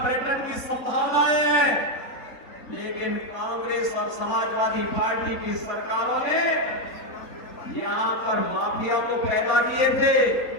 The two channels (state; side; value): late; right; 4.0 ms